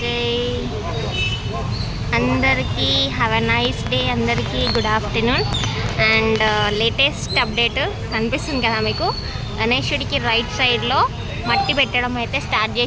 जय। అందరికీ హ్యావ్ ఎ నైస్ డే, అందరికీ good afternoon. And latest update కనిపిస్తుంది కదా మీకు, గణేశుడికి రైట్ సైడ్లో మట్టి పెట్టడం అయితే స్టార్ట్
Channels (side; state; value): both; identical; correlation 1.00